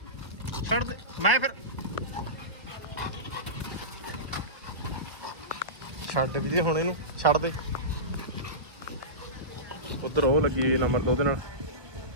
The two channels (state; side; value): late; left; 1.4 ms